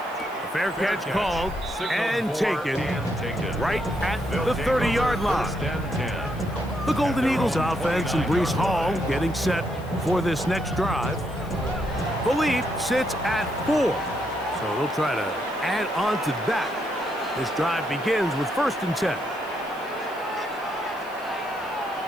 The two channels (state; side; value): noise; left; hiss, 24 dB below the sound